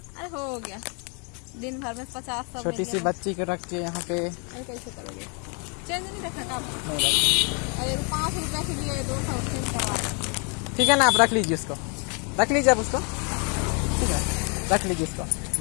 अरे हो गया दिन भर में 50-100। छोटी सी बच्ची को रख के यहाँ पे अरे कैसे करोगे? चेंज नहीं रखा काम। नहीं। अरे 5 रुपए के लिए 200 चेंज करवा। ठीक है ना, आप रख लीजिए उसको, रख लीजिए आप उसको। ठीक है, रख लीजिए उसको,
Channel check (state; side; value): quieter; right; 36.1 dB